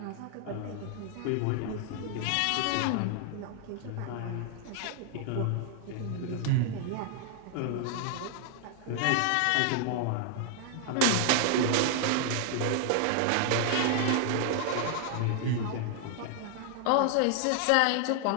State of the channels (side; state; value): both; different; correlation 0.00